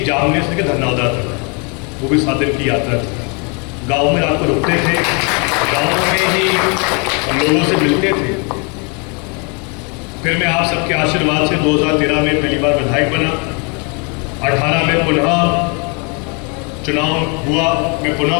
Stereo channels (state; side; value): quieter; right; 34.1 dB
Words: जामनेर से धनौदा तक, वो भी 7 दिन की यात्रा थी। गाँव में रात को रुकते थे, गाँव में ही हम लोगों से मिलते थे। फिर मैं आप सबके आशीर्वाद से 2013 में पहली बार विधायक बना, 18 में पुनः चुनाव हुआ, मैं पुनः